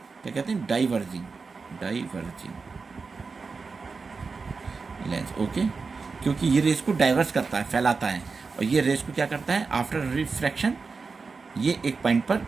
क्या कहते हैं, डाइवर्जिंग लेंस। ओके, क्योंकि ये रेस को डाइवर्स करता है, फैलाता है, और ये रेस को क्या करता है, आफ्टर रिफ्रैक्शन ये एक पॉइंट पर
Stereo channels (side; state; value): left; quieter; 4.6 dB